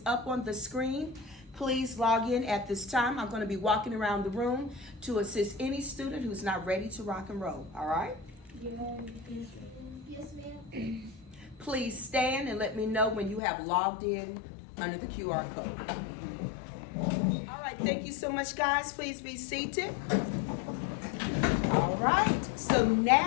up on the screen. Please log in at this time. I'm going to be walking around the room to assist any student who's not ready to rock and roll. All right? Yes, ma'am. Please stand and let me know when you have logged in under the QR code. All right, thank you so much, guys. Please be seated. All right, so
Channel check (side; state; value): right; drops out; at 13.4 s